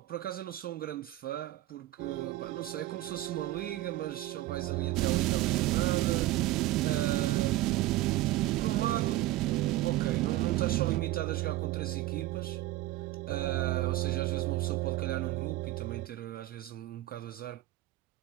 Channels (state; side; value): quieter; left; 16.2 dB